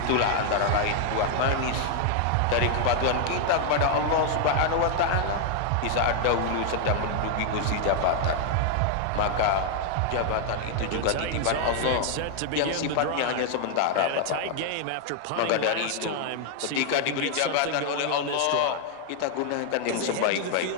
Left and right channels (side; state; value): both; different; correlation 0.00